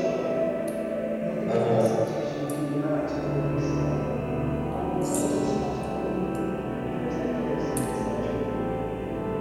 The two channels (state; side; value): identical; both; correlation 1.00